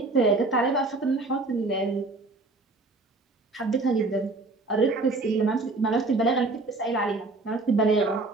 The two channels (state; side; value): quieter; left; 3.3 dB